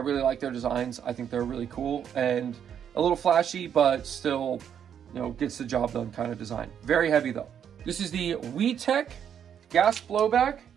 like their designs. I think they're really cool and a little flashy, but still, you know, gets the job done kind of design. Very heavy though. This is the WeTech gas blowback,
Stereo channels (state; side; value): quieter; left; 8.6 dB